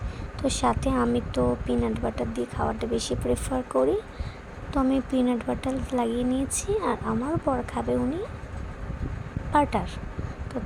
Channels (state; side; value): identical; both; correlation 1.00